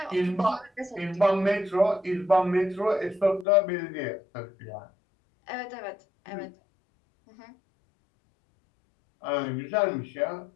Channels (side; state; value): right; drops out; at 3.5 s